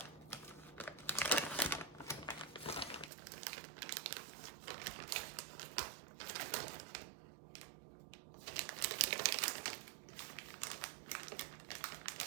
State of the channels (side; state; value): left; drops out; at 3.1 s